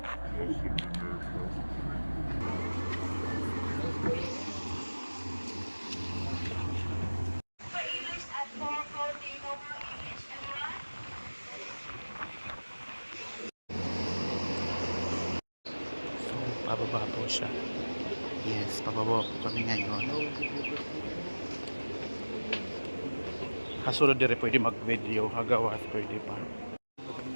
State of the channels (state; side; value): inverted; both; correlation -1.00